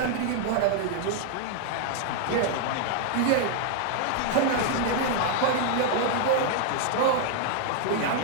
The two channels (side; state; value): both; different; correlation 0.00